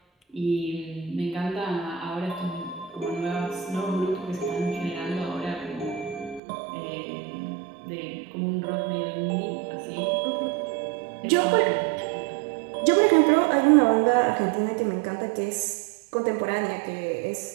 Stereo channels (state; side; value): drops out; left; at 6.4 s